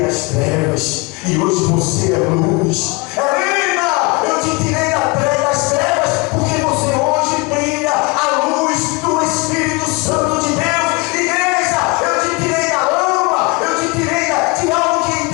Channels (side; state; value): right; quieter; 27.3 dB